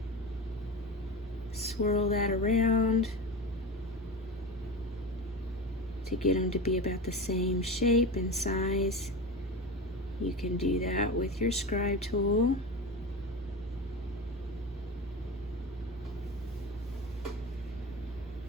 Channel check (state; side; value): normal; both; correlation 0.26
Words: swirl that around to get them to be about the same shape and size, you can do that with your scribe tool.